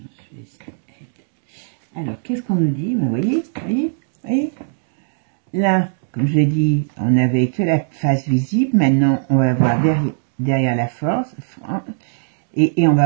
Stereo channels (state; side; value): silent; left; digital silence